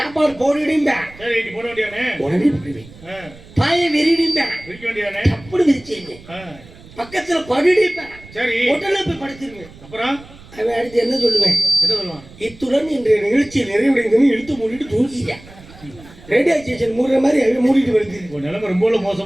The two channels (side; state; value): right; noise; rumble, 21 dB below the sound